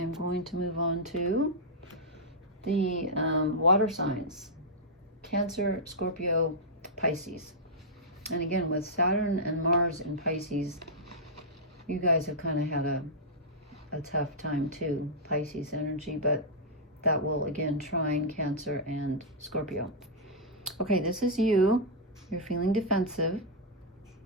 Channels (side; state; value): both; normal; correlation -0.09